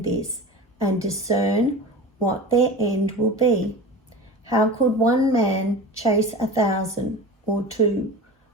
this and discern what their end will be. How could one man chase 1,000 or two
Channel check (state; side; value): normal; both; correlation 0.33